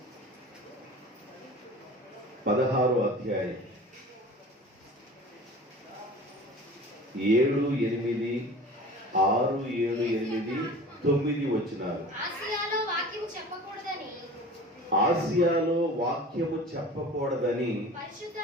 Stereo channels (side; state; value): both; normal; correlation 0.40